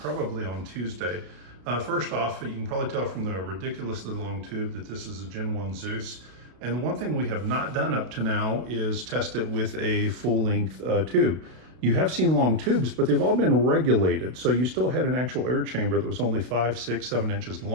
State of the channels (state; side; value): late; left; 32 ms